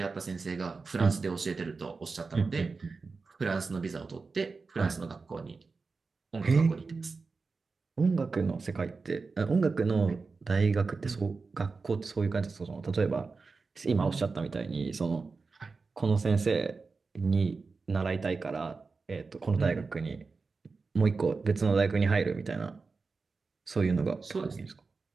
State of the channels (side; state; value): left; quieter; 4.3 dB